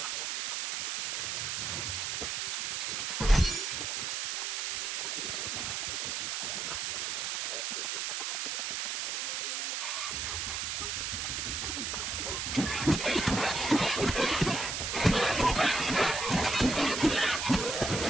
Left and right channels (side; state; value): right; noise; hiss, 1 dB below the sound